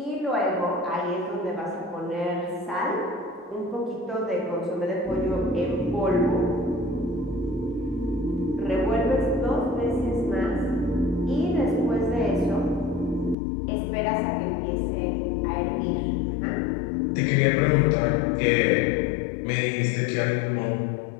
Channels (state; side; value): drops out; right; at 13.4 s